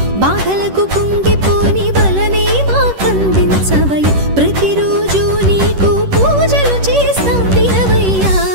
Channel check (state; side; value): late; left; 10 ms